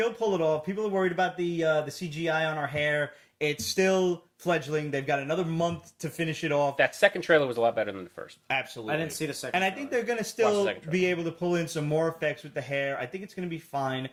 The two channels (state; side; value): identical; both; correlation 1.00